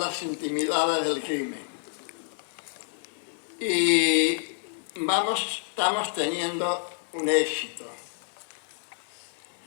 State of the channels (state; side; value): silent; right; digital silence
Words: intimidades del crimen. Y estamos teniendo un éxito.